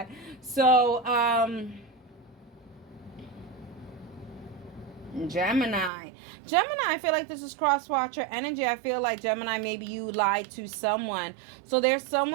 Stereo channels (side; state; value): left; drops out; at 5.9 s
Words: So, Gemini, I feel like this is cross-watcher energy. I feel like, Gemini, maybe you lied to someone. So there's